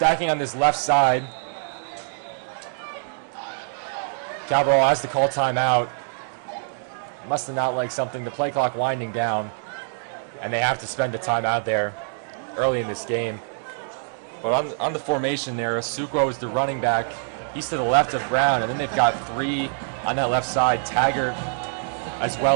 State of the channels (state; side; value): silent; left; digital silence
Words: on this left side. Cabral has to call timeout. Must have not liked something. The play clock winding down, and they have to spend the timeout there early in this game. But on the formation there, Asuquo is the running back. He's to the left of Brown, and then they've got 3 on that left side, Taggart as